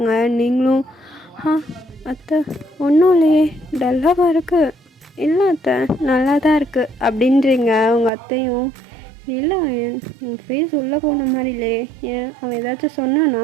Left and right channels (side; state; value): left; drops out; at 8.1 s